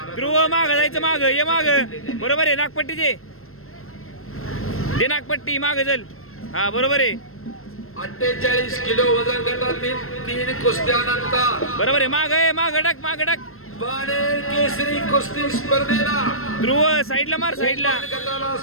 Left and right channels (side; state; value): right; late; 0.62 ms